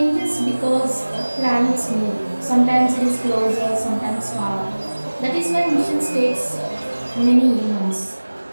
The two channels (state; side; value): inverted; both; correlation -1.00